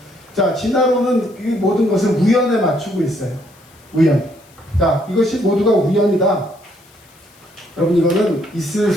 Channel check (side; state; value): left; noise; hiss, 28 dB below the sound